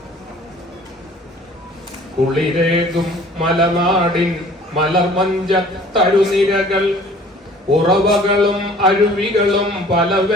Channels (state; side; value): normal; both; correlation 0.51